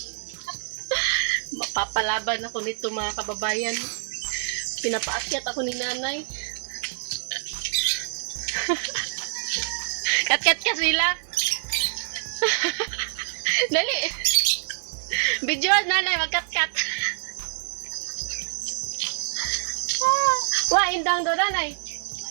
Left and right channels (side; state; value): left; silent; digital silence